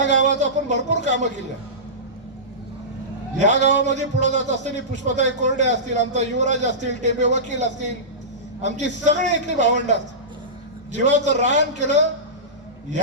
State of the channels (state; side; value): normal; both; correlation -0.20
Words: गावात आपण भरपूर कामं केली. या गावामध्ये पुढे जात असताना पुष्पताई कोरडे असतील, आमचा युवराज असतील, टेबे वकील असतील, आमची सगळी इथली भावंड असतील, जीवाचं रान केलं.